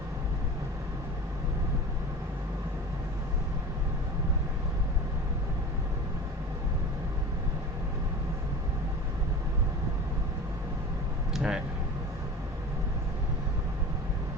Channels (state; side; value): normal; both; correlation 0.35